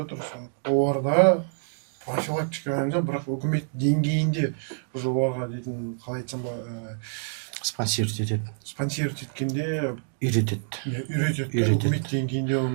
Оларда профилактика ғана, бірақ үкімет деңгейінде уже оларға дейтін, қалай айтсам ба, Спонсировать етеді. спонсировать еткенде Үйретеді. үйретеді. Үкімет деңгейінде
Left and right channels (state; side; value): silent; left; digital silence